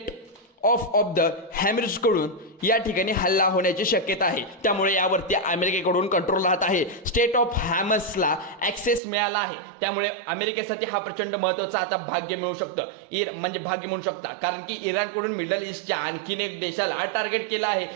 ऑफ द हॅमरिज कडून या ठिकाणी हल्ला होण्याची शक्यता आहे। त्यामुळे यावरती अमेरिकेकडून कंट्रोल राहत आहे। स्टेट ऑफ हॉर्मझला ॲक्सेस मिळाला आहे। त्यामुळे अमेरिकेसाठी हा प्रचंड महत्त्वाचा आता भाग्य मिळू शकतं, म्हणजे भाग्य म्हणू शकता, कारण की इराणकडून मिडल ईस्टच्या आणखीन एक देशाला टार्गेट केलं आहे।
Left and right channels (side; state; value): left; drops out; at 9.0 s